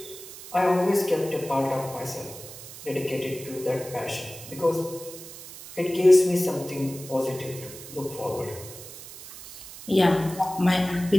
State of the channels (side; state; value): right; noise; hiss, 14 dB below the sound